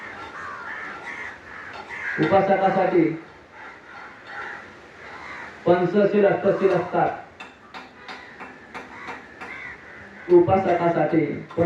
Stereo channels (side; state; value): both; identical; correlation 1.00